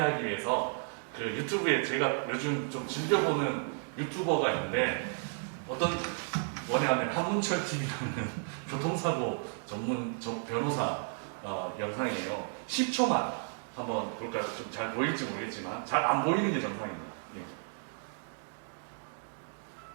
위해서 그 유튜브에 제가 요즘 좀 즐겨보는 유튜버가 있는데 어떤 뭐냐면 한문철 TV라는 교통사고 전문 변호사 영상이에요. 10초만 한번 볼까요? 좀 잘 보일지 모르겠지만 잘 안 보이는 게 정상입니다. 예.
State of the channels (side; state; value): left; silent; 56 dB below the other